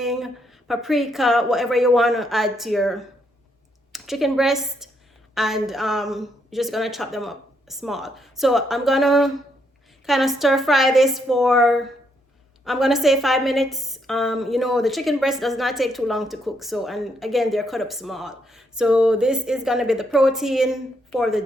paprika, whatever you want to add to your chicken breast. And you're just gonna chop them up small. So I'm gonna kind of stir fry this for, I'm gonna say 5 minutes. The chicken breast does not take too long to cook. So, and again, they're cut up small. So this is gonna be the protein for the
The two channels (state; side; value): normal; both; correlation 0.75